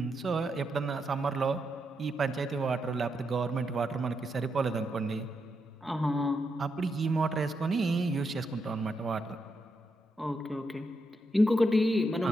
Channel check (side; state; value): both; normal; correlation 0.82